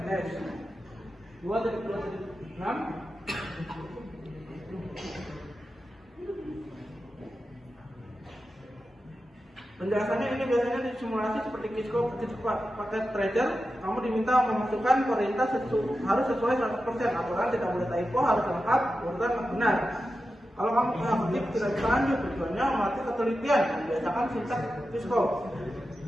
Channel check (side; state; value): both; normal; correlation 0.91